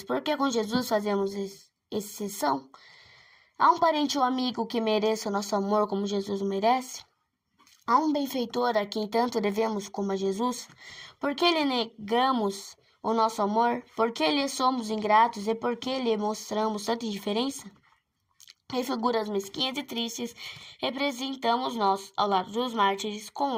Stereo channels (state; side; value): identical; both; correlation 1.00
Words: por que com Jesus fazemos exceção? Há um parente ou amigo que mereça o nosso amor como Jesus o merece? Há um benfeitor a quem tanto devemos como a Jesus? Por que lhe negamos o nosso amor? Por que lhe somos ingratos e por que lhe mostramos tanta indiferença? Em figuras mesquinhas e tristes, representamos nós, ao lado dos mártires,